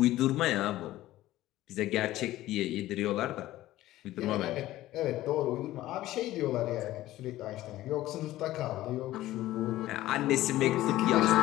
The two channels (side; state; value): right; quieter; 15.5 dB